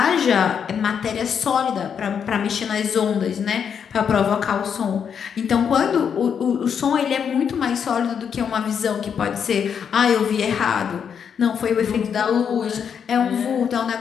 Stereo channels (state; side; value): quieter; right; 7.4 dB